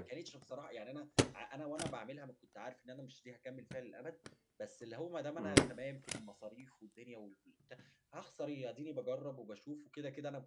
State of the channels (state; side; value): identical; both; correlation 1.00